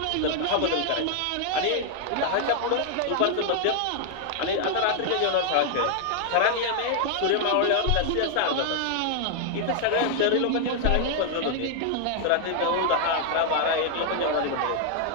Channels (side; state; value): both; different; correlation 0.00